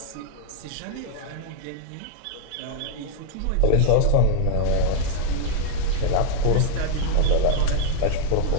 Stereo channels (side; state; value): both; different; correlation 0.00